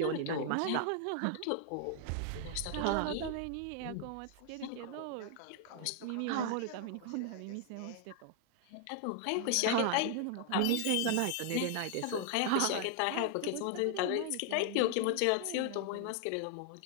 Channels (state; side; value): different; both; correlation 0.00